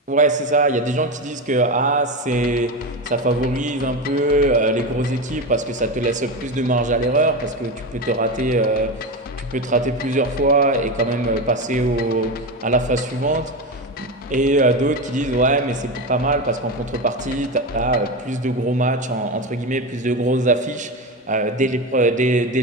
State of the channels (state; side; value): normal; both; correlation 0.19